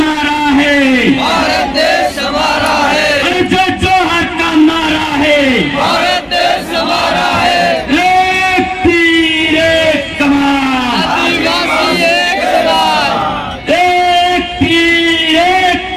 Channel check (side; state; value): both; identical; correlation 1.00